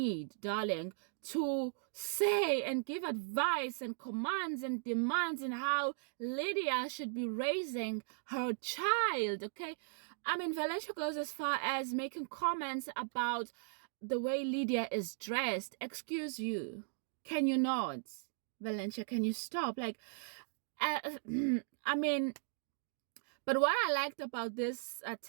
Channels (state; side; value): silent; left; digital silence